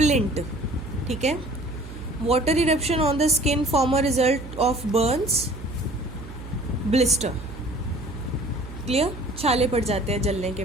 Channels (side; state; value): right; noise; hum, 12 dB below the sound